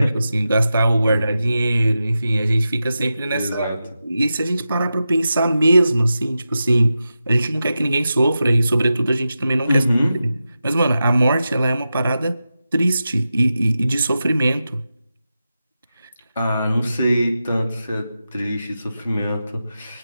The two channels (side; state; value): both; inverted; correlation -0.91